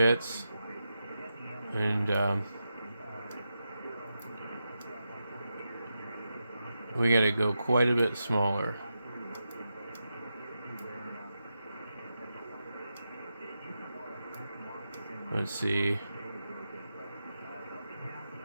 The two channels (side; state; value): both; inverted; correlation -0.88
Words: And we got to go quite a bit smaller. Let's see.